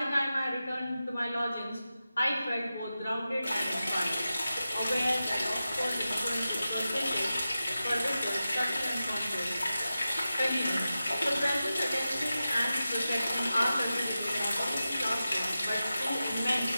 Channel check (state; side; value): inverted; both; correlation -0.93